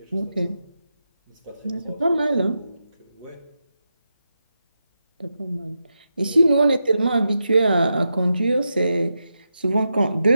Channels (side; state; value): both; inverted; correlation -0.88